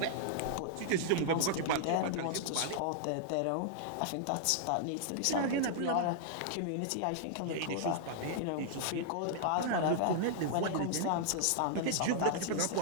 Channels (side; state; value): both; different; correlation -0.01